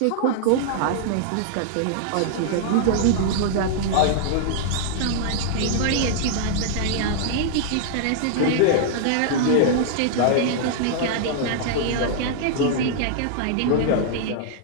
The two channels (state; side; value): different; both; correlation -0.01